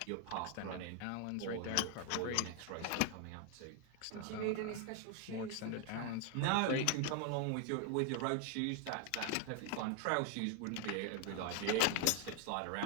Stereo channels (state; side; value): different; both; correlation 0.00